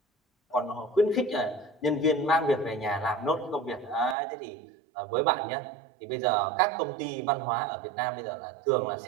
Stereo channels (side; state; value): left; drops out; at 4.2 s